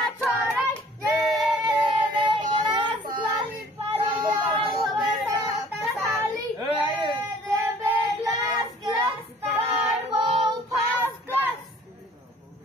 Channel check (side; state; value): both; normal; correlation 0.53